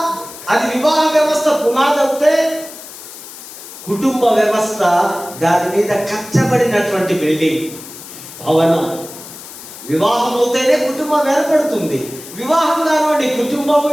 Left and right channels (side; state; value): left; noise; hiss, 15 dB below the sound